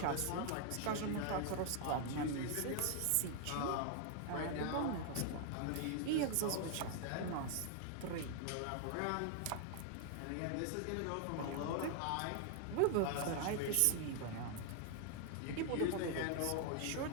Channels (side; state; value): both; different; correlation 0.00